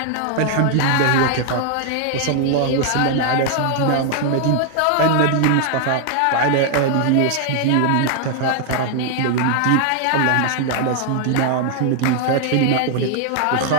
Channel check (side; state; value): both; different; correlation 0.00